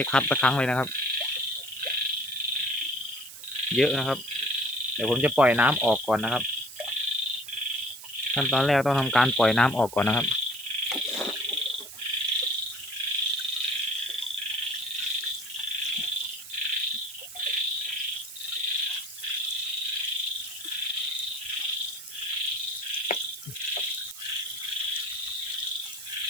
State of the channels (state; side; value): noise; right; hiss, 14 dB below the sound